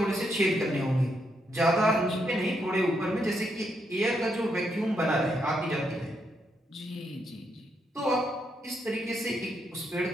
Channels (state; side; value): normal; both; correlation 0.79